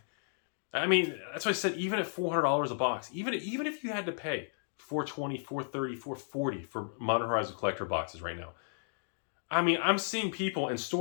I mean, that's why I said even at $400 a box, even if you had to pay $420, $430, $440 for Modern Horizon collector boxes right now. I mean, I'm seeing people in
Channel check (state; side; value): silent; right; digital silence